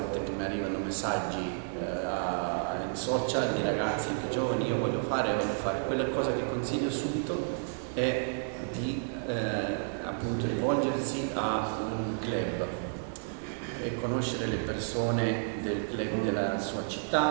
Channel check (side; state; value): left; silent; 56 dB below the other